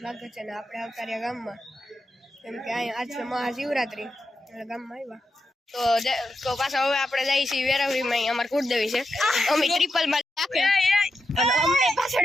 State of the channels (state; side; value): normal; both; correlation 0.87